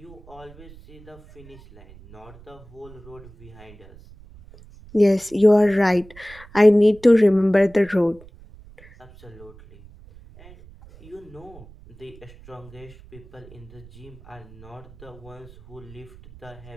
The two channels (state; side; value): noise; right; rumble, 21 dB below the sound